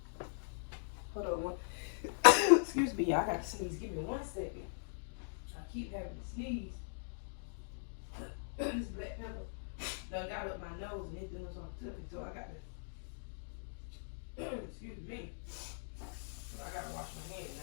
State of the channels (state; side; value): silent; right; digital silence